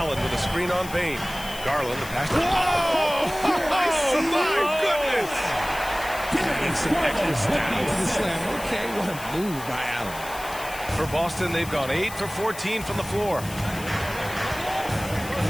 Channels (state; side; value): noise; left; hiss, 14 dB below the sound